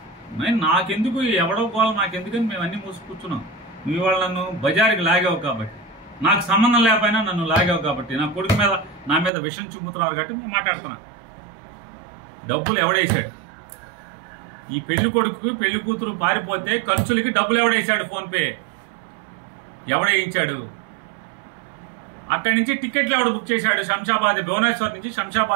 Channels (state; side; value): drops out; left; at 9.3 s